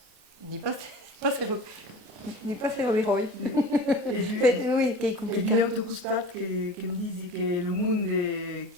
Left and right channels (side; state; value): left; late; 28 ms